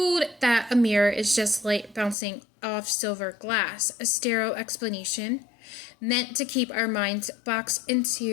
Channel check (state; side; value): drops out; right; at 2.1 s